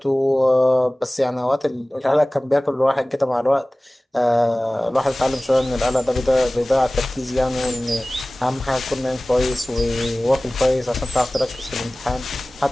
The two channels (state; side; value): normal; both; correlation 0.98